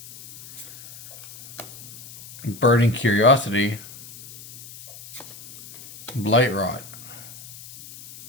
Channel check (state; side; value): noise; left; hiss, 17 dB below the sound